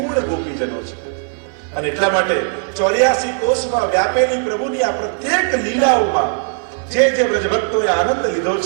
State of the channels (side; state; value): left; silent; 55 dB below the other